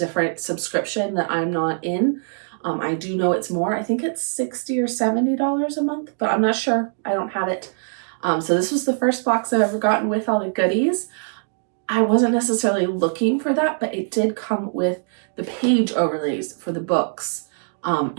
subscription that I'm not in. I do know it's more. I think it's $60 or $70 a month, but I'm not sure. I don't have it. So this was the first box I've ever gotten with all the goodies. I wasn't necessarily looking for that, but it did come with the page overlays for the books.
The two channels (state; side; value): silent; left; digital silence